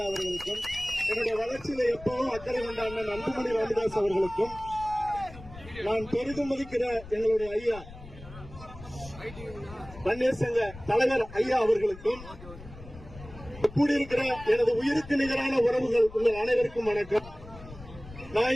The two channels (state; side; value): noise; left; rumble, 16 dB below the sound